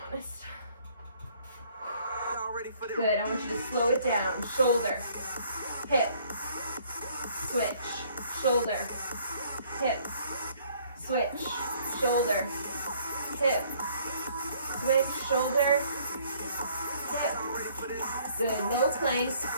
Good, I want you to slow it down. Shoulder, hip, switch, shoulder, hip, switch, shoulder, hip, switch, shoulder, hip. Good, no plank.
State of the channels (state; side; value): inverted; both; correlation -0.61